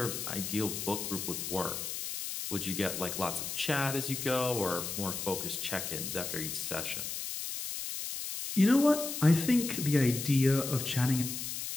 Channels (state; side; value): noise; left; hiss, 5 dB below the sound